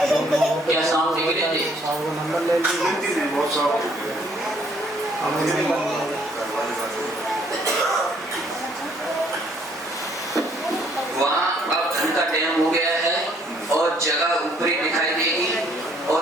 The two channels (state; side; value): normal; both; correlation 0.64